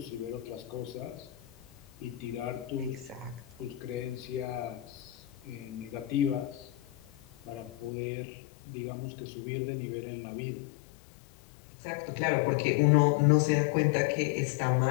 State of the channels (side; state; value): right; drops out; at 7.9 s